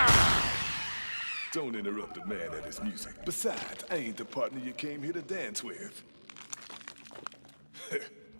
Don't interrupt a man at his music. Besides, I ain't the partner you came here to dance with.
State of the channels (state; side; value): inverted; both; correlation -1.00